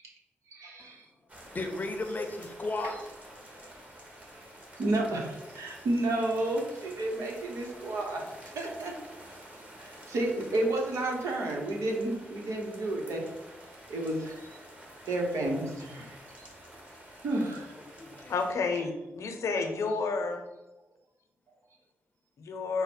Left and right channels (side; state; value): both; normal; correlation 0.73